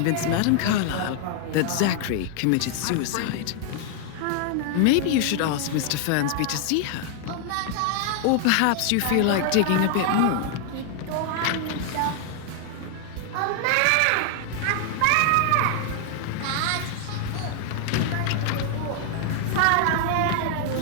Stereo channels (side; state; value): both; different; correlation 0.00